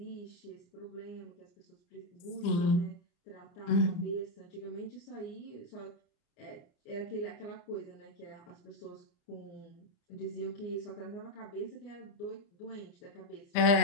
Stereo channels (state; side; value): late; right; 30 ms